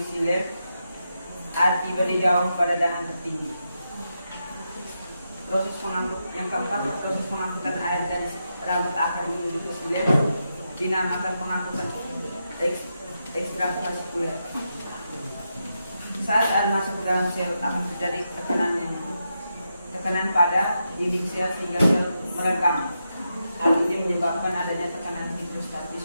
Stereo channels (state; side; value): inverted; both; correlation -0.86